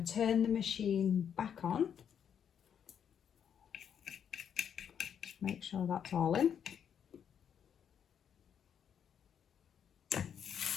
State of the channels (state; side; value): quieter; right; 8.3 dB